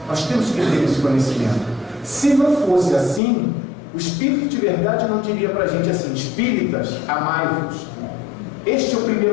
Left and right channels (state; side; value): drops out; right; at 3.2 s